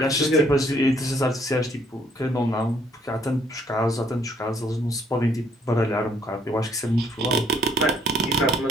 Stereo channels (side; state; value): both; normal; correlation 0.65